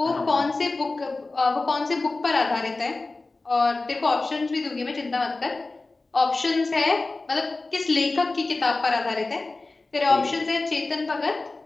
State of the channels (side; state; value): right; quieter; 3.4 dB